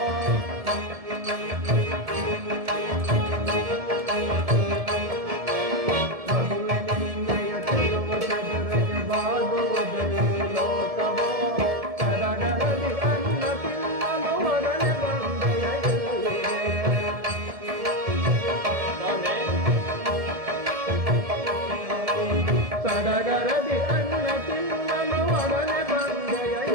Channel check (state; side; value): late; left; 1.7 ms